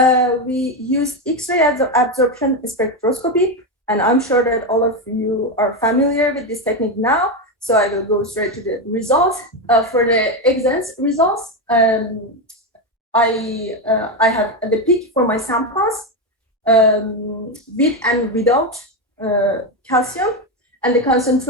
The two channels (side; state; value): both; normal; correlation 0.11